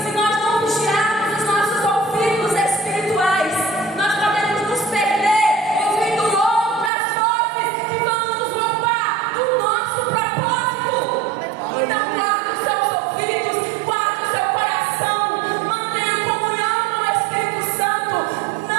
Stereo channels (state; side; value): drops out; left; at 6.9 s